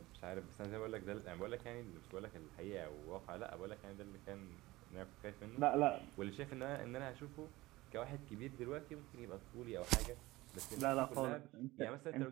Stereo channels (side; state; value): left; quieter; 19.3 dB